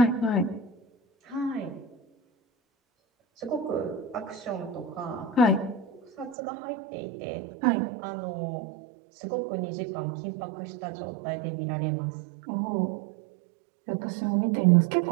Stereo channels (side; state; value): left; drops out; at 6.4 s